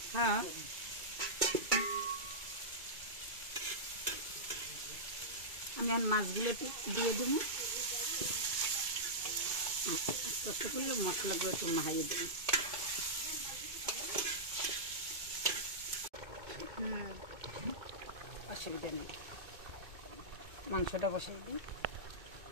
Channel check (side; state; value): left; late; 2.2 ms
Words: হ্যাঁ আমি আর মাছগুলো দিয়ে দেবো, আস্তে আস্তে করলে মশলাগুলো একটু মাহাইয়ে দেবো। অসুবিধা নেই, মাংসটা বসিয়ে দিই।